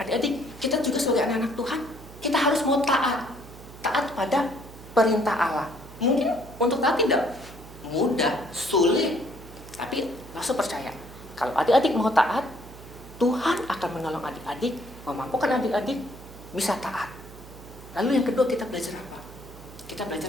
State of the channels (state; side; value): noise; right; hum, 17 dB below the sound